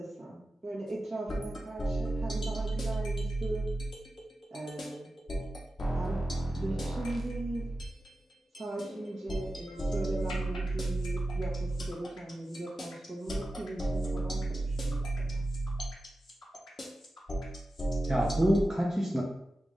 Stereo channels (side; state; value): both; normal; correlation 0.93